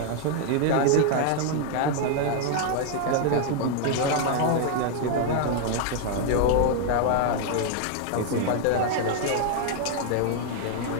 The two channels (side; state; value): both; different; correlation 0.00